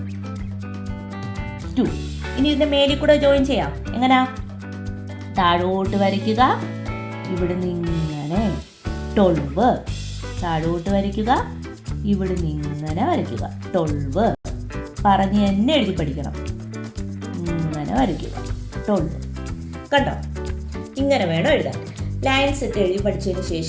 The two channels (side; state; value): both; identical; correlation 1.00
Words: 2. ഇനി ഇതിന്റെ മേലിൽ കൂടെ ജോയിൻ ചെയ്യാം. എങ്ങനാ? താഴോട്ട് വരയ്ക്കുക. ഇവിടുന്ന് ഇങ്ങനെ 12 താഴോട്ട് വരയ്ക്കുക. ഇവിടുന്ന് ഇങ്ങനെ വരയ്ക്കുക. 12 പറഞ്ഞ് തന്നെ എഴുതി പഠിക്കണം. ഇങ്ങനെ വരയ്ക്കുക. 12 കണ്ടോ? ഇങ്ങനെ വേണം എഴുതാൻ. ലൈൻസ് ഇട്ട് എഴുതി പഠിച്ചതിന്